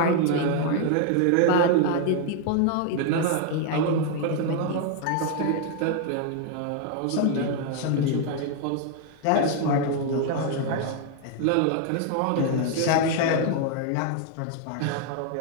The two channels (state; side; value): different; both; correlation 0.00